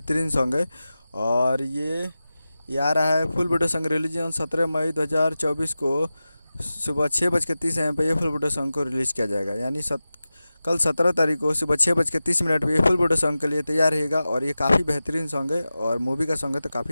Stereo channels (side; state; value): both; inverted; correlation -0.95